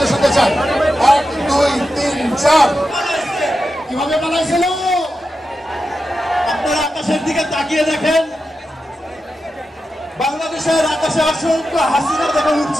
শুনতে চাই 1 2 3 4 কিভাবে পালাইছিল? আপনারা আকাশের দিকে তাকিয়ে দেখেন, বাংলাদেশের আকাশে অসংখ্য হাসিনা দেখা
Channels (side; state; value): both; normal; correlation 0.90